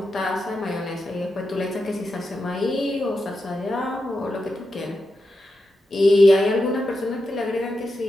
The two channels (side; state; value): both; normal; correlation 0.88